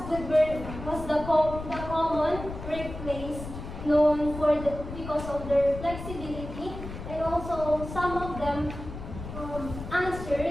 food was the common workplace known because of their flexibility, and also some of them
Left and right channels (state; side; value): noise; left; rumble, 10 dB below the sound